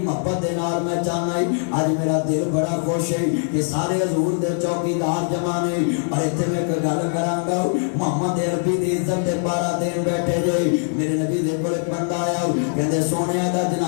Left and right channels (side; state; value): right; silent; 59 dB below the other